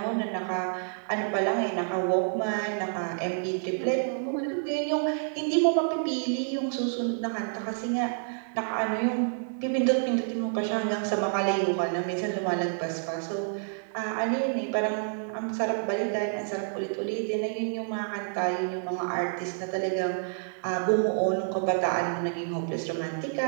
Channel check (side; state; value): left; silent; digital silence